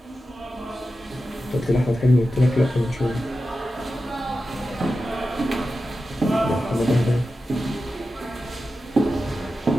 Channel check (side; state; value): both; normal; correlation 0.92